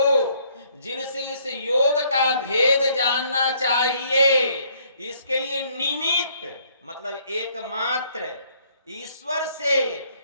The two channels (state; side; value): inverted; both; correlation -0.65